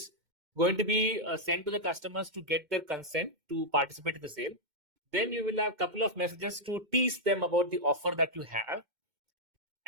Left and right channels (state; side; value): late; left; 2.1 ms